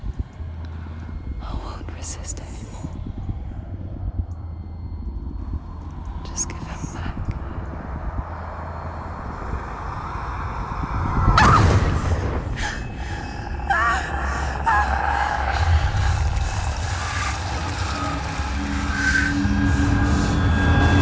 I won't resist anymore. Just give him back.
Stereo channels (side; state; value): both; identical; correlation 1.00